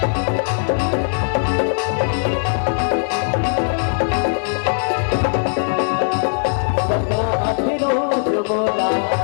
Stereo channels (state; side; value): silent; right; digital silence